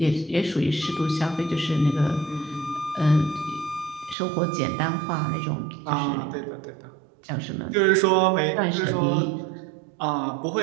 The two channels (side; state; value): left; drops out; at 4.2 s